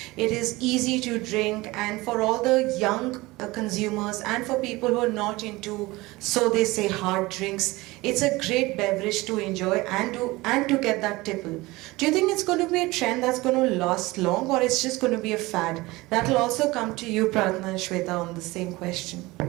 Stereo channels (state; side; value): quieter; left; 21.0 dB